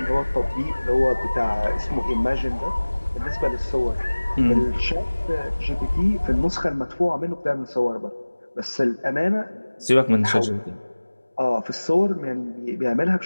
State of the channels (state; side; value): inverted; both; correlation -1.00